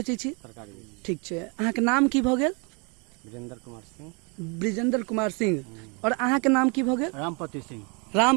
छी? ठीक छै। अहाँके नाम की भऽ गेल? ब्रिजेंद्र कुमार सिंह। ब्रिजेंद्र कुमार सिंह। और अहाँके नाम की भऽ गेल? रामप्रति सिंह।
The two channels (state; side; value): quieter; left; 33.3 dB